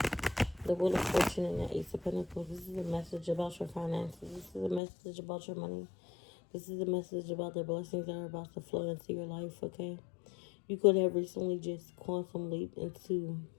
The Wheel of Fortune and the Ace of Pentacles. This is a message about your finances. This is a message about your money. This is a message about the blessings that are about to flow into your life, okay? You could have recently just quantum leaped into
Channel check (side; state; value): right; drops out; at 4.8 s